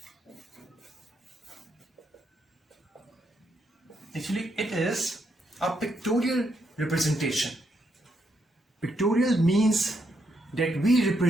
Actually, it is a pictorial representation. Pictorial means that we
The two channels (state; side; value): normal; both; correlation 0.78